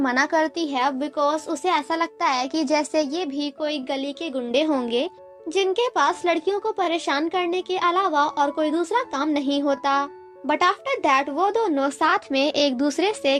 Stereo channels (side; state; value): both; identical; correlation 1.00